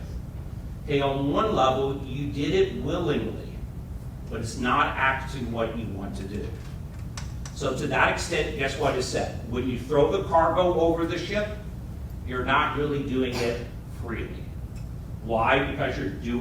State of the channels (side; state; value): both; identical; correlation 1.00